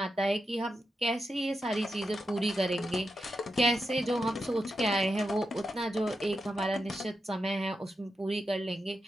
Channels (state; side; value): normal; both; correlation 0.87